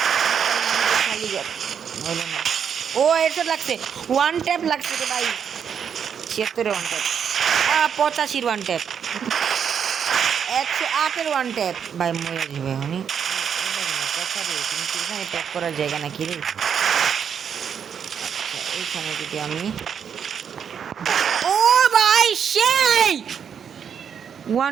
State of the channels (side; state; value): left; quieter; 7.6 dB